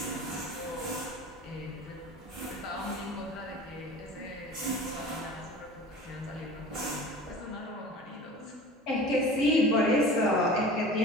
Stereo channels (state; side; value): normal; both; correlation 0.39